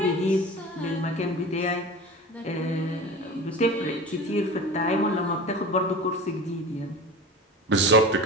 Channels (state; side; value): normal; both; correlation 0.34